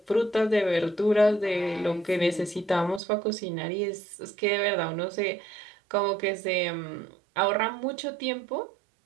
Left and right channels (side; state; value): left; drops out; at 3.0 s